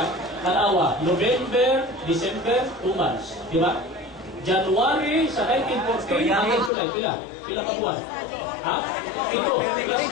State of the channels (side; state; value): right; drops out; at 6.7 s